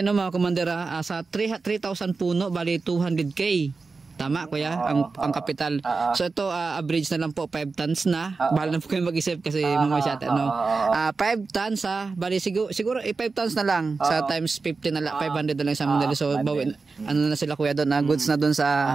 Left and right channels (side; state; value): left; quieter; 4.2 dB